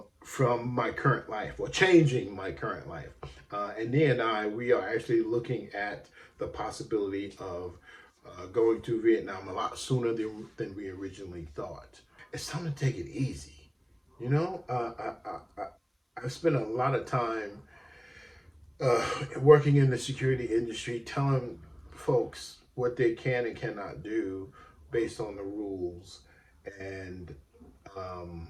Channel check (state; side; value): identical; both; correlation 1.00